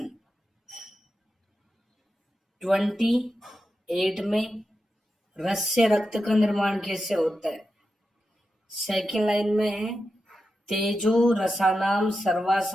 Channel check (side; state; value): both; normal; correlation 0.89